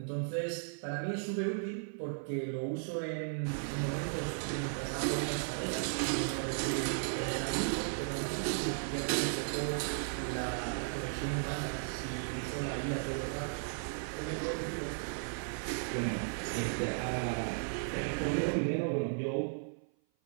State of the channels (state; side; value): silent; left; 54 dB below the other